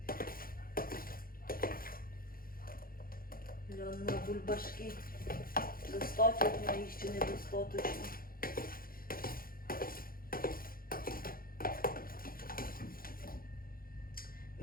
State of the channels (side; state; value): right; late; 0.42 ms